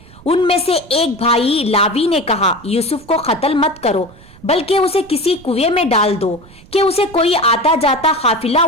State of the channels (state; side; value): noise; right; rumble, 23 dB below the sound